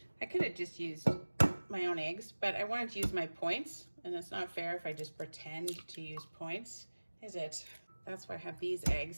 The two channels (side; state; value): both; inverted; correlation -1.00